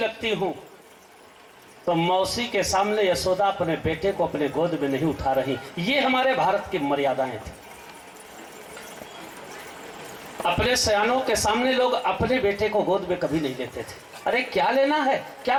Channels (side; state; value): both; identical; correlation 1.00